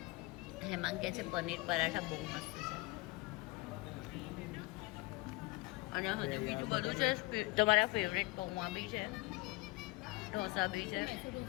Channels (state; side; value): quieter; right; 22.1 dB